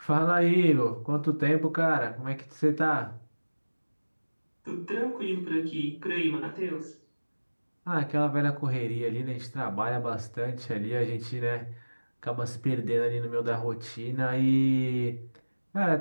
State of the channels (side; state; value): both; inverted; correlation -1.00